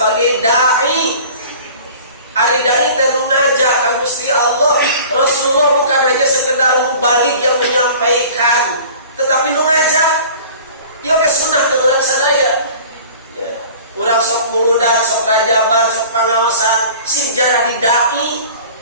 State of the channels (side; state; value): both; inverted; correlation -0.44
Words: dai. Ari dai teh ngajak ka Gusti Allah. Rasulullah bukan hanya sekedar mubalik yang menyampaikan, tetapi ngajak. Ieu ge sunah teh urang sadaya. Ya, urang sok muludan, sok rajaban, sok pangaosan, sing jara di dai.